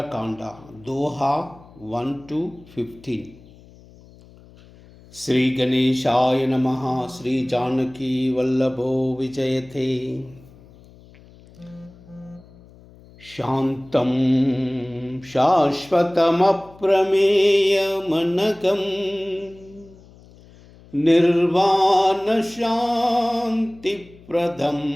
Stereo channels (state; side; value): noise; left; hum, 24 dB below the sound